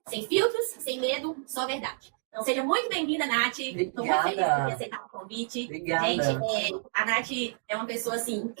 Sem filtros, sem medo, só verdade. Então seja muito bem-vinda, Nath. Estou muito feliz por ter aceitado o convite. Obrigada. Gente, a Nath é uma pessoa assim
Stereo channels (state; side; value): silent; left; digital silence